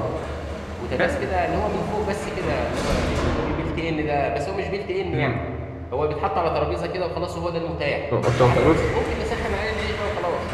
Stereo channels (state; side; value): identical; both; correlation 1.00